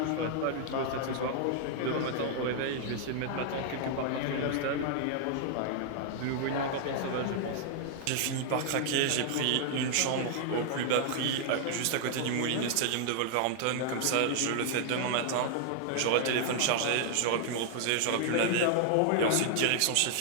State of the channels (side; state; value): both; different; correlation 0.00